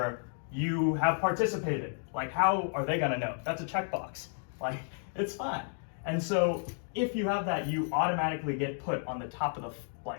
you have participated. Like, how are they gonna know? That's a checkbox. Like, it's fine. And so if you have that, you automatically get put on the top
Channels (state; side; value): silent; right; 56 dB below the other